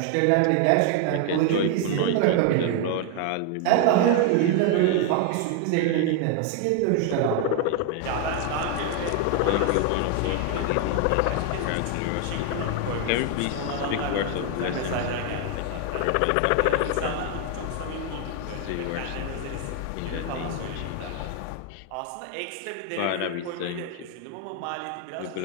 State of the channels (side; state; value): both; different; correlation 0.00